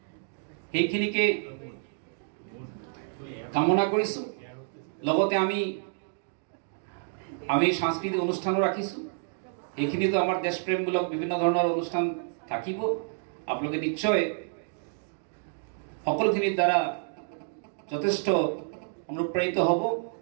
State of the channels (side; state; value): left; silent; digital silence